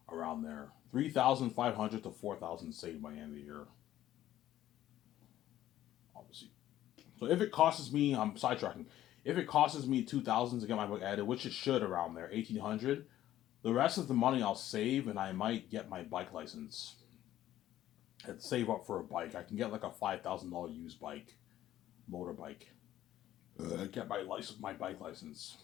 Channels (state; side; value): quieter; right; 13.2 dB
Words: Around there. 3,500 to 4,000 saved by the end of the year. Obviously. So if it costs me, I'm sidetracking. If it costs me 2,000 to get my book added, which it should around there, 1,800, the rest of the money I'll save and I might get my bike license. And save up for a bike. I can get like a $5,000 used bike, motorbike. Get my bike license.